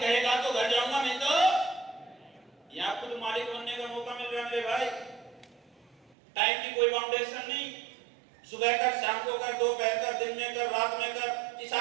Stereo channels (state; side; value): drops out; left; at 6.2 s